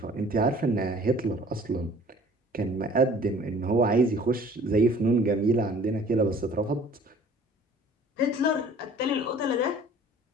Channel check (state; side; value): normal; both; correlation 0.51